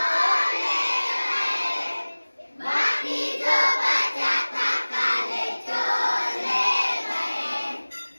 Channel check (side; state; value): both; inverted; correlation -1.00